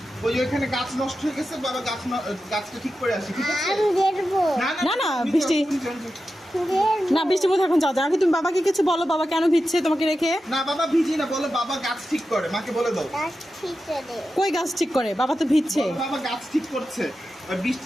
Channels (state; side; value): normal; both; correlation 0.91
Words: ওই যে ওখানে গাছ নষ্ট হয়ে গেছে, বাবা গাছটা ঠিক করে আসি, ঠিক আছে? না, না, বৃষ্টি। না, বৃষ্টির মধ্যে এখন যাও। আগে তুমি বাবাকে কিছু বলো, বাবা কেন ভিজছে তোমাকে রেখে। না বাবা ভিজি না, বলো বাবা গাছ ঠিক করে, মাকে বলে দাও। কই গাছ ঠিক করে? বাবা তো ভিজছে। বলো বাবা গাছ ঠিক করছে, আর